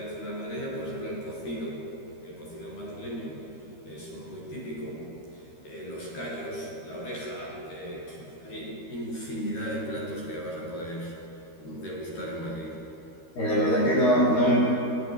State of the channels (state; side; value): late; right; 13 ms